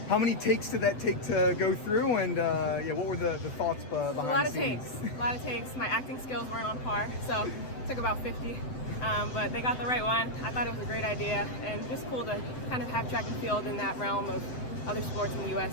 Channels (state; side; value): late; right; 7.8 ms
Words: How many takes did that take to go through, and what were the thoughts behind A lot the of scenes? takes, a lot of takes. My acting skills weren't on par, so it took about 50. But they got the right one. I thought it was a great idea, and just cool to kind of have track and field in that realm of other sports in the U.S.,